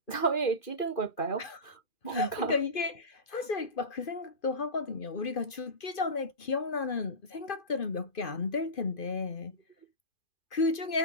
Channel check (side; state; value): right; late; 2.5 ms